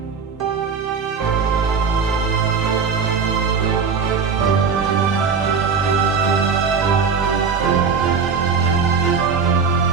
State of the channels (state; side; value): quieter; left; 5.6 dB